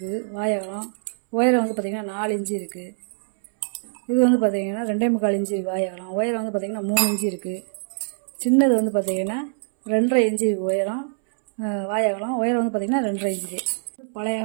வாயகம். உயரம் வந்து பார்த்தீங்கன்னா 4 இன்ச்சு இருக்குது. இது வந்து பார்த்தீங்கன்னா 2.25 இன்ச்சு வாயகம். உயரம் வந்து பார்த்தீங்கன்னா 3 இன்ச்சு இருக்குது. சின்னது வந்து பார்த்தீங்கன்னா 2.5 இன்ச்சு உயரம் வாயகம். உயரம் வந்து பார்த்தீங்கன்னா 2.5 இன்ச்சு. பழைய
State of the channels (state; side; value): silent; left; 63 dB below the other